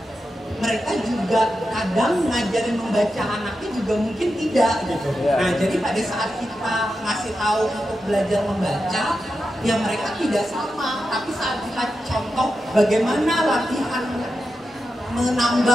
mereka juga kadang ngajarin membaca anaknya juga mungkin tidak gitu. Nah jadi pada saat kita ngasih tahu untuk belajar membaca, ya mereka tidak sama. Tapi saat kita contoh bagaimana latihan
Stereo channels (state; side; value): normal; both; correlation 0.89